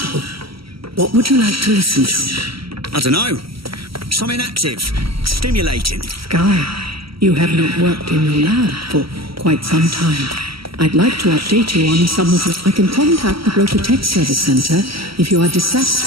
What would you like to listen to? I don't know. Something active, stimulating. Sky, you have not worked in your lab for quite some time. I'd like to update you on some of the... I can contact the Broker Tech Service Center if you are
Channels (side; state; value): left; late; 0.75 ms